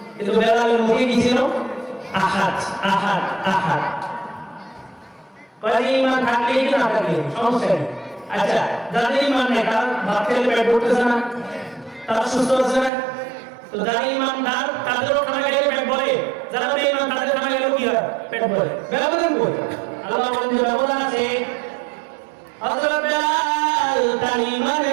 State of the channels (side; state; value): left; drops out; at 12.9 s